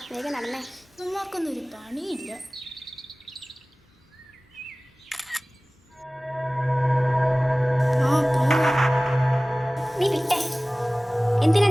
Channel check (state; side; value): normal; both; correlation 0.98